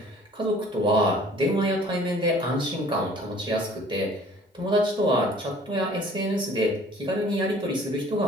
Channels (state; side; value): normal; both; correlation 0.52